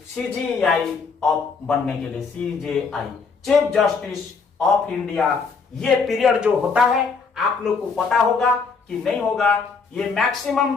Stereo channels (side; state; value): right; quieter; 5.0 dB